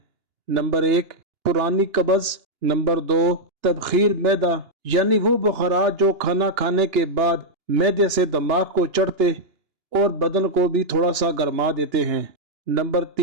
نمبر 1 پرانی قبض، نمبر 2 تبخیر معدہ یعنی وہ بخارات جو کھانا کھانے کے بعد معدے سے دماغ کو چڑھتے اور بدن کو بھی تھوڑا سا گرما دیتے ہیں۔ نمبر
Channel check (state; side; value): late; left; 2.9 ms